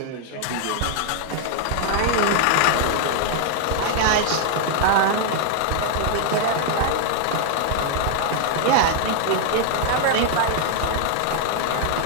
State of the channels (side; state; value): both; different; correlation 0.00